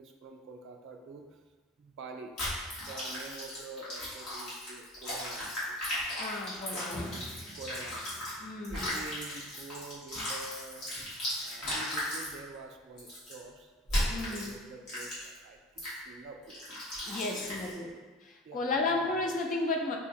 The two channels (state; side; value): normal; both; correlation 0.36